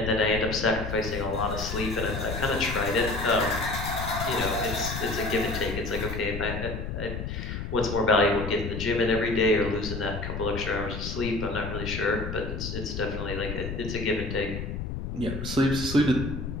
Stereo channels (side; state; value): left; noise; rumble, 5 dB below the sound